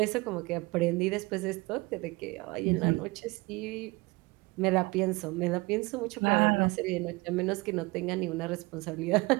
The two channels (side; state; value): left; quieter; 23.9 dB